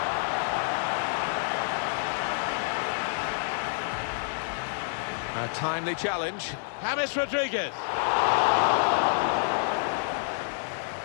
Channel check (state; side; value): silent; right; digital silence